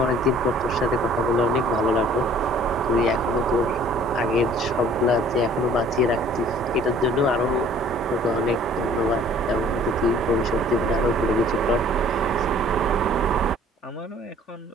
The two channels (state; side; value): normal; both; correlation 0.54